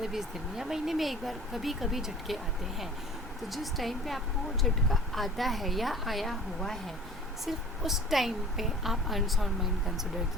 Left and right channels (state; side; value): normal; both; correlation 0.46